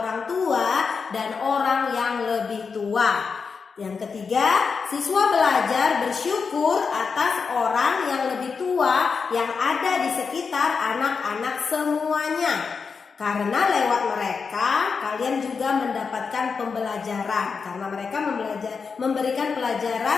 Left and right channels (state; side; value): quieter; right; 5.4 dB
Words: tua dan orang yang lebih tua. Yang ketiga, siswa belajar bersyukur atas orang yang lebih tua yang ada di sekitar anak-anak semuanya. Karena lewat mereka, kalian juga mendapatkan pembelajaran. Karena mereka memberikan